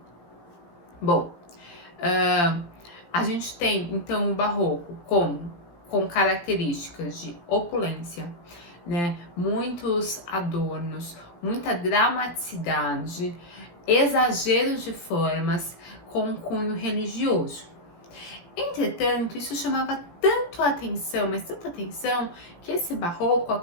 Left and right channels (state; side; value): late; right; 17 ms